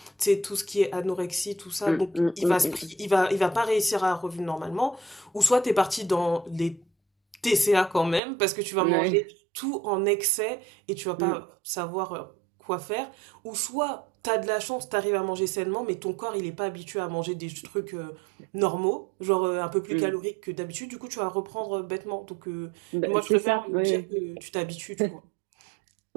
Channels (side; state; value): left; drops out; at 8.2 s